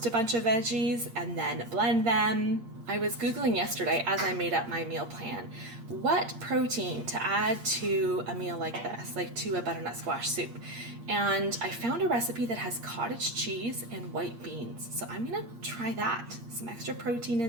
a bunch of veggies and then blend them. I was Googling yesterday as I made up my meal plan, what protein to add to a meal like this, like to a butternut squash soup. And I found a recipe that has cottage cheese and white beans. So I'm gonna try that. Some extra protein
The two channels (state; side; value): late; left; 8.7 ms